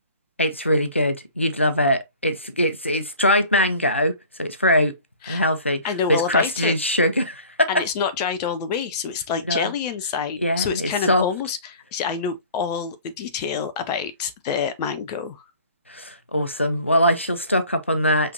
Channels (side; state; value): both; inverted; correlation -0.47